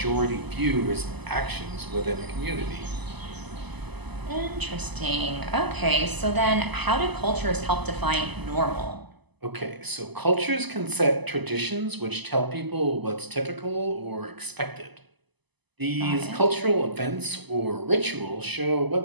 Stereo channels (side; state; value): left; late; 0.99 ms